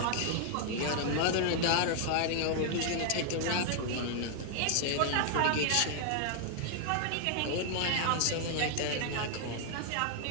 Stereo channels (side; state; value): both; different; correlation 0.00